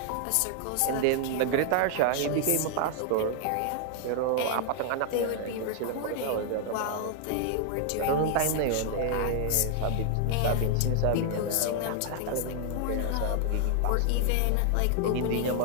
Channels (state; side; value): different; both; correlation 0.00